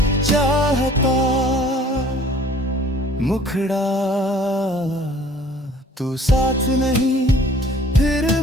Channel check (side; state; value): both; normal; correlation 0.52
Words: चाहता। मुखड़ा तू साथ नहीं फिर